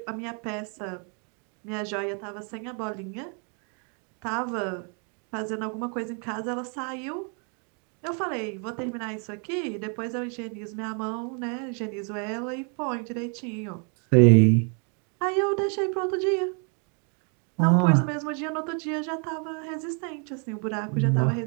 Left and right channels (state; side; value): quieter; left; 39.0 dB